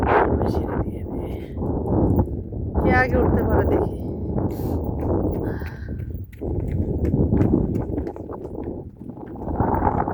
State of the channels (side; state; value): both; identical; correlation 1.00